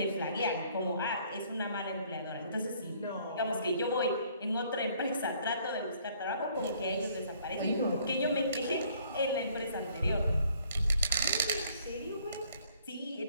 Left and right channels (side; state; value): both; inverted; correlation -0.61